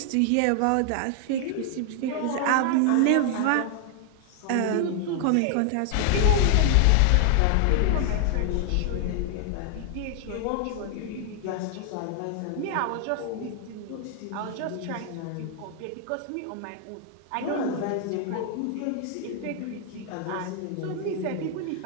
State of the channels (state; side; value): different; both; correlation 0.00